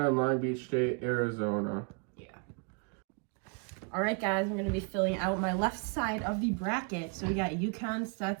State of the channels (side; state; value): left; quieter; 35.6 dB